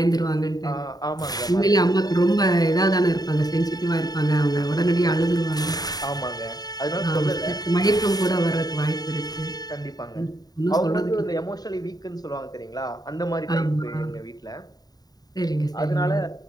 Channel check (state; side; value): late; right; 0.19 ms